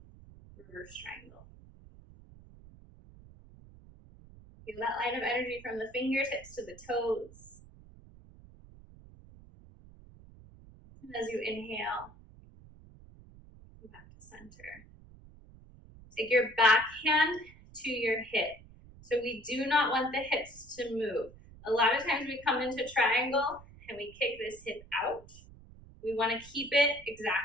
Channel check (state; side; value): noise; right; rumble, 21 dB below the sound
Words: reverse triangle. Feel that line of energy from the fingertips to the toes. And as you inhale, come back to center. Take your back hand to your hip. So we do not want the hips to move. A lot of times we come into triangle and we kick this hip out. We want to keep it